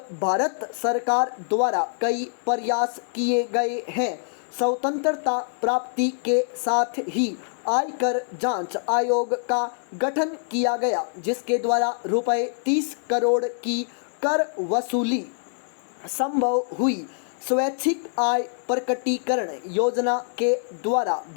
भारत सरकार द्वारा कई प्रयास किए गए हैं। स्वतंत्रता प्राप्ति के साथ ही आयकर जांच आयोग का गठन किया गया, जिसके द्वारा रुपए 30 करोड़ की कर वसूली संभव हुई। स्वैच्छिक आय प्रकटीकरण योजना के द्वारा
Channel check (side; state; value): right; silent; digital silence